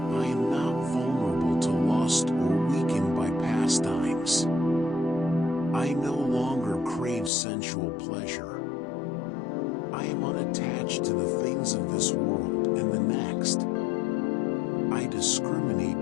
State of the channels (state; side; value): drops out; right; at 7.3 s